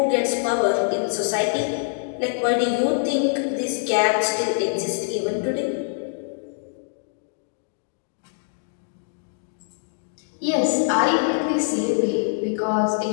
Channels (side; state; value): right; silent; digital silence